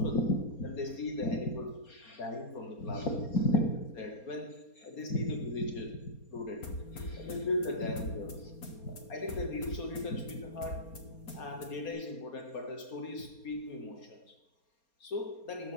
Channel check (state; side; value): late; right; 4.3 ms